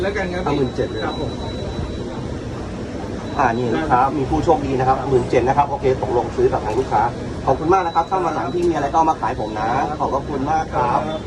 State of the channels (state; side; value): identical; both; correlation 1.00